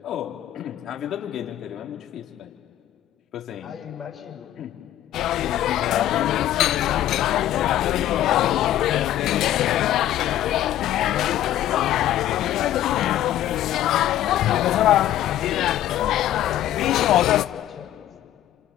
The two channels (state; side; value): quieter; right; 12.7 dB